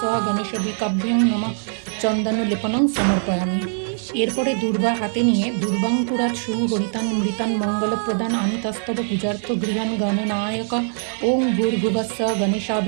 গণেশাবিকাভ্যং নমঃ। চন্দন লেপনং সমর্পয়ামি। এরপরে দুর্বা হাতে নিয়ে দুর্বাঙ্কুরাৎ সুহরিতান মৃতান মঙ্গলপ্রদান আনিতস্তব পূজার্থ গৃহান গণনায়ক। ওং ভূর্ভুবস্স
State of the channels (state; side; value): silent; left; digital silence